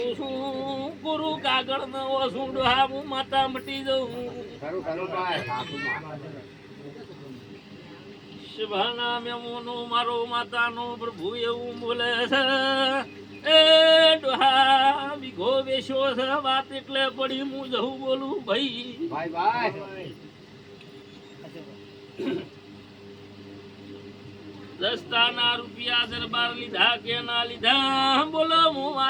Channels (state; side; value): identical; both; correlation 1.00